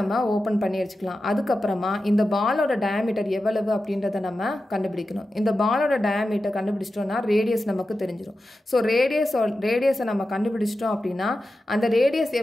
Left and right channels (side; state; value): both; normal; correlation 0.92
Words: ஓப்பன் பண்ணி வச்சுக்கலாம். அதுக்கப்புறமா இந்த பாலோட டயாமீட்டர் எவ்வளவு அப்படின்றத நம்ம கண்டுபிடிக்கணும். இந்த பாலோட டயாமீட்டர் கண்டுபிடிச்சிட்டோம்னா ரேடியஸ் நமக்கு தெரிஞ்சிடும். ஸோ ரேடியஸை நம்ம கண்டுபிடிச்சிட்டோம் அப்படின்னா அந்த ரேடியஸ்